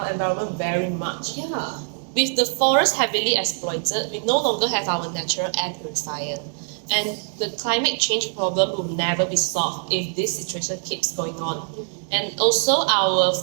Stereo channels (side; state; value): left; silent; 63 dB below the other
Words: environment very much. Yeah. With the forest heavily exploited, we no longer have our natural air purifier. And the climate change problem will never be solved if this situation keeps going on. And also, our